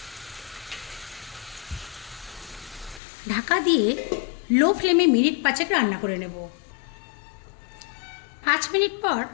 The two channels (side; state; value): right; drops out; at 3.0 s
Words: ঢাকা দিয়ে লো ফ্লেমে মিনিট 5 রান্না করে নেব। 5 মিনিট পর